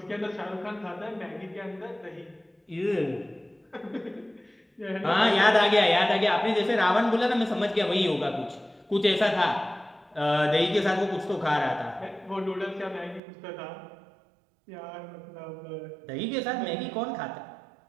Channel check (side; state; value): left; drops out; at 13.2 s